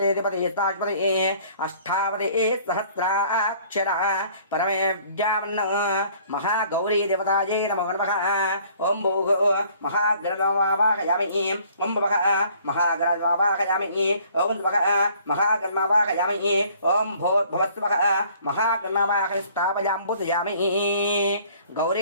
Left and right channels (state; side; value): inverted; both; correlation -0.56